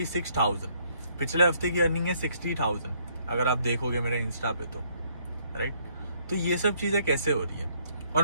पिछले हफ्ते की अर्निंग है 60,000, अगर आप देखोगे मेरे इंस्टा पे तो, राइट। तो ये सब चीजें कैसे हो रही है।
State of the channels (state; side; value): inverted; both; correlation -0.67